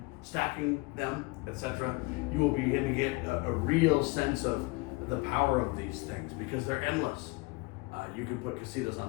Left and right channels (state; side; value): quieter; right; 25.4 dB